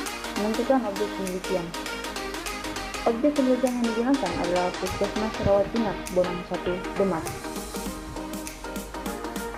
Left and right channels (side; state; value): both; identical; correlation 1.00